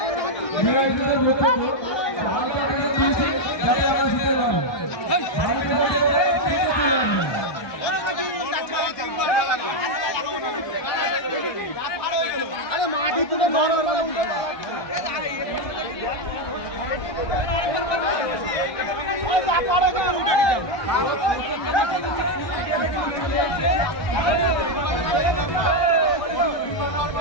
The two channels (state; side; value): late; right; 1.2 ms